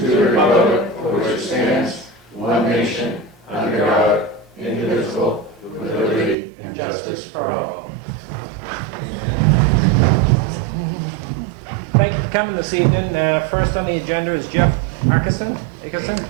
republic for which it stands, one nation, under God, indivisible, with liberty and justice for all. Thank you for coming this evening. First on the agenda is Jeff Ackerson.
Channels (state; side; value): drops out; left; at 6.4 s